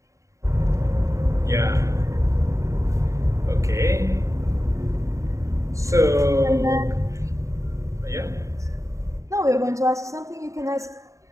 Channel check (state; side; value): late; left; 0.15 ms